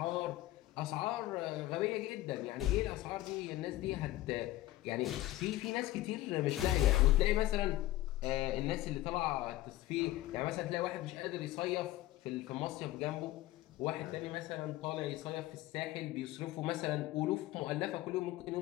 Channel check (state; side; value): quieter; right; 16.0 dB